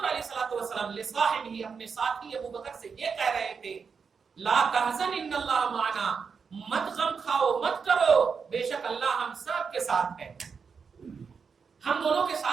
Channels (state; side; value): quieter; left; 5.8 dB